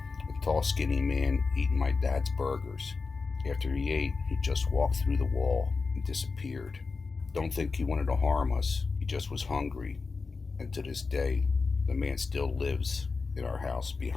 a tall, skinny man eating my dad's burgers. After he ate, he just walked through the wall and disappeared. Don't think he wanted to harm us. He just was hungry. And to this day, the man still lives in our house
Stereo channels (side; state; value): right; quieter; 4.4 dB